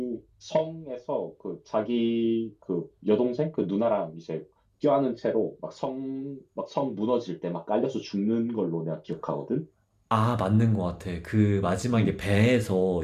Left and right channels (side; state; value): both; identical; correlation 1.00